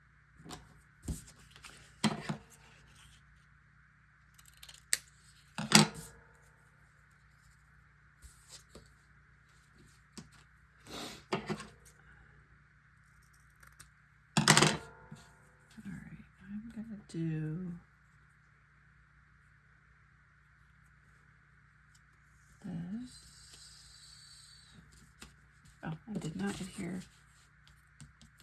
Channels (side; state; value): both; identical; correlation 1.00